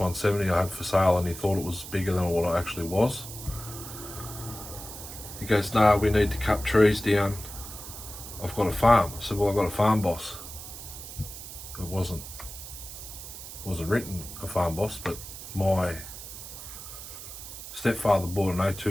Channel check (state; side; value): noise; right; hiss, 11 dB below the sound